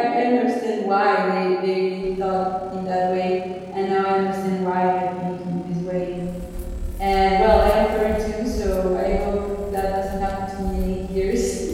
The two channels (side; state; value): both; identical; correlation 1.00